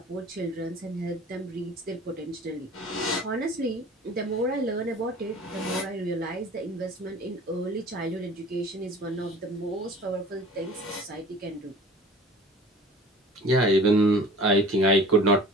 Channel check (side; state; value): both; normal; correlation 0.44